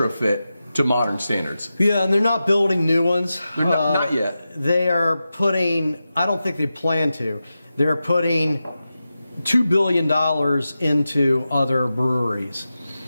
to modern standards. Yeah, and they're not building new ones. They're not yet. They are putting, I don't think they plan to, they're putting $2 billion into other breweries.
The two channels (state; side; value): inverted; both; correlation -0.92